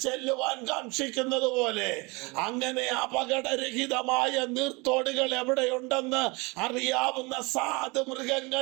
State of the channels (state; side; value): quieter; left; 26.7 dB